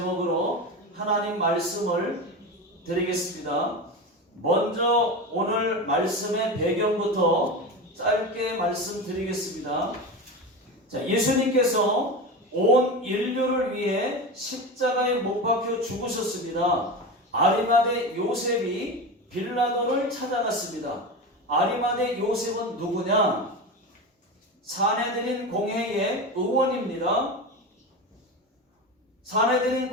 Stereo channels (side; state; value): both; normal; correlation 0.24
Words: 하나님 말씀을 드리겠습니다. 먼저 오늘 말씀의 배경부터 짧게 말씀드리겠습니다. 자, 예수님께서 온 인류를 위해 십자가에 못 박혀 죽으셨습니다. 아리마대 요셉이 빌라도를 찾아갔습니다. 아리마대 요셉은 누구냐? 사내들인 공회의 의원입니다.